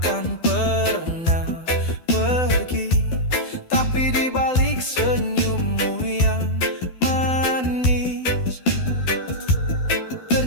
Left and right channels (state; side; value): late; right; 12 ms